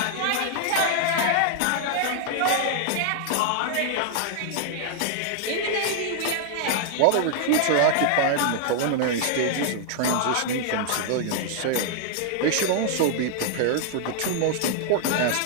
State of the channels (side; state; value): both; different; correlation 0.00